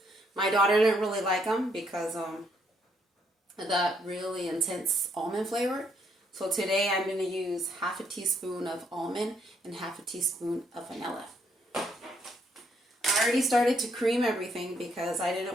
My daughter didn't really like them because that really intense almond flavor. So today I'm going to use half a teaspoon of almond and half a teaspoon of vanilla. I already started to cream everything because I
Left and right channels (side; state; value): both; normal; correlation 0.73